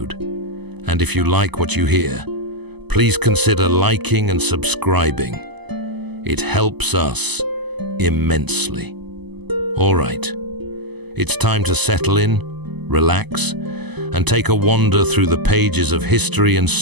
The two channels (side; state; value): left; late; 0.99 ms